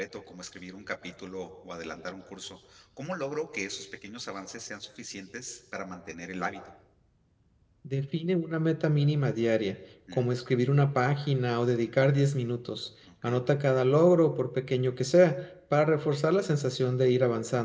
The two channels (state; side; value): identical; both; correlation 1.00